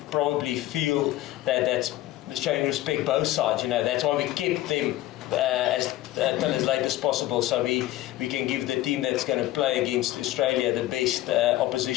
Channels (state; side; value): quieter; right; 15.6 dB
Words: probably feel that that's showing respect both sides. That's why we kept them till as late as possible, so we can give the team that's going to play against Australia the best